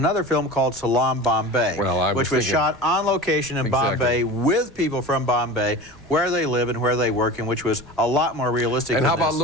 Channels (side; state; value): both; normal; correlation 0.34